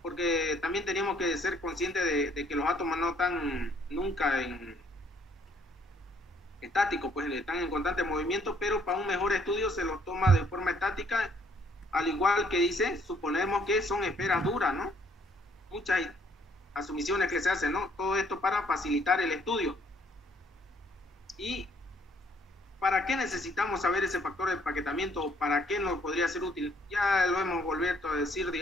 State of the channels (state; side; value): normal; both; correlation 0.65